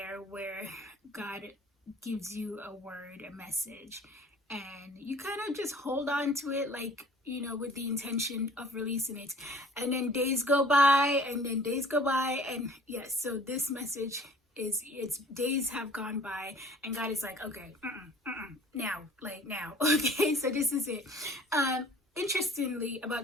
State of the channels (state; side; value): normal; both; correlation 0.50